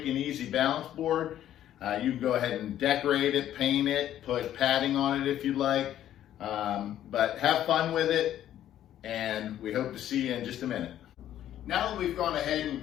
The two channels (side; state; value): right; quieter; 11.7 dB